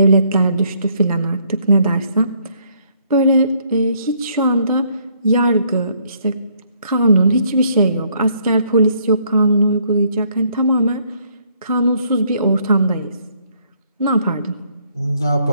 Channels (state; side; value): inverted; both; correlation -0.68